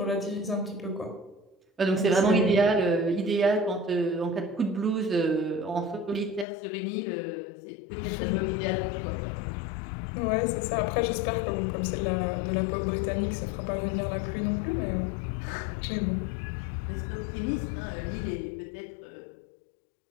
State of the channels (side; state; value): right; drops out; at 6.5 s